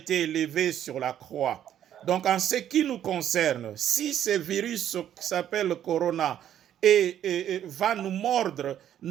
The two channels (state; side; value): quieter; left; 10.6 dB